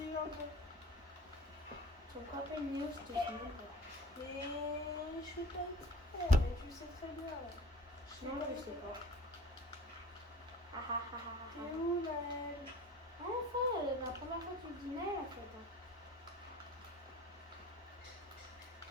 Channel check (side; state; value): both; normal; correlation 0.43